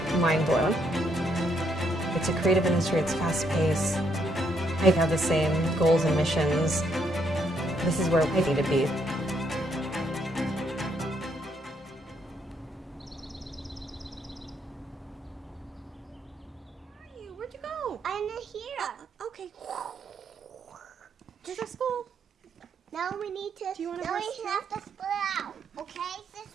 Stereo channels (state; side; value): normal; both; correlation 0.73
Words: mind blown. It's a creative industry, it's fast paced. I have the same goals and missions. This is where I need to be. Where'd you go? I'm here. Okay. Is that school? Now we need to. Do you want to now we rest have to split out. Okay,